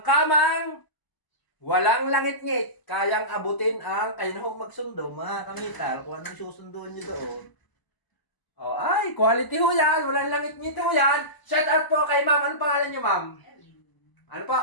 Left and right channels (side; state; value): right; late; 1.0 ms